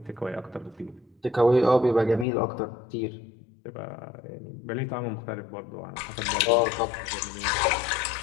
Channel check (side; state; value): right; drops out; at 2.2 s